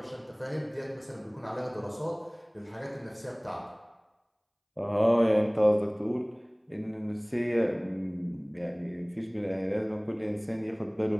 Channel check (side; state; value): both; identical; correlation 1.00